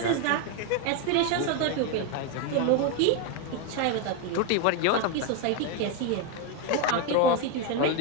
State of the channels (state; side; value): different; both; correlation 0.02